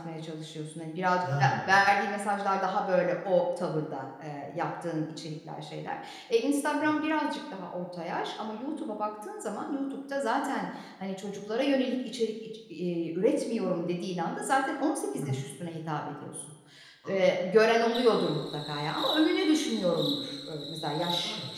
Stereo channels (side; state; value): both; identical; correlation 1.00